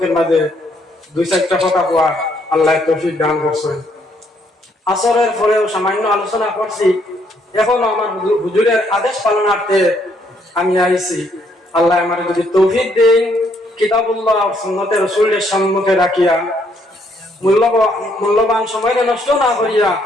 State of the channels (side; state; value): both; normal; correlation 0.70